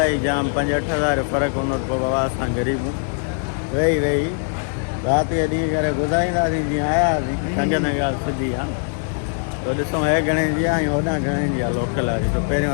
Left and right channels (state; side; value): silent; right; 56 dB below the other